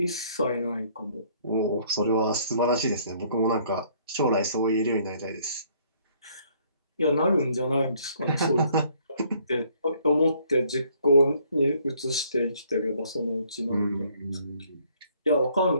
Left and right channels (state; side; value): inverted; both; correlation -0.63